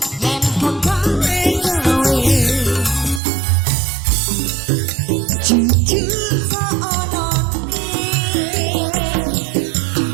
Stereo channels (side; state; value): left; drops out; at 3.2 s